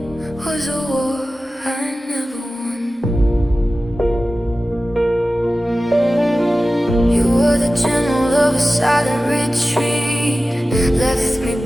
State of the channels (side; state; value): both; normal; correlation 0.95